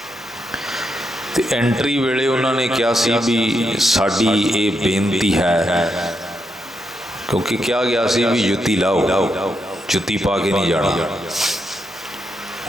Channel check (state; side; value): normal; both; correlation 0.82